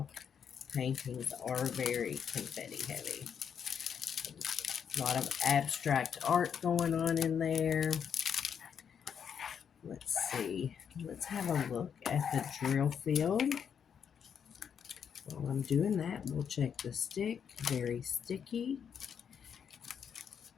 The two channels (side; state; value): right; quieter; 7.6 dB